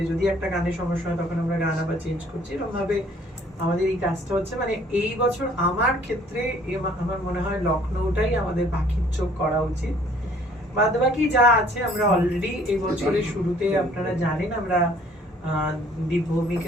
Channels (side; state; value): both; normal; correlation 0.58